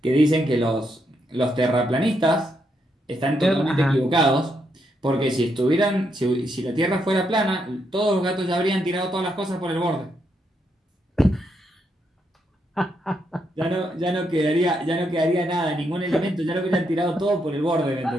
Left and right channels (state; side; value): normal; both; correlation 0.79